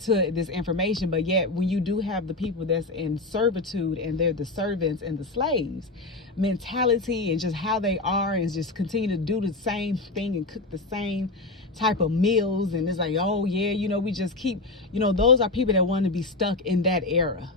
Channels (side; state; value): right; quieter; 3.1 dB